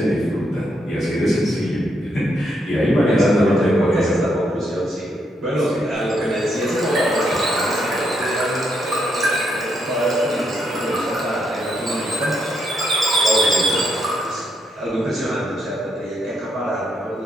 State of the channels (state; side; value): normal; both; correlation 0.77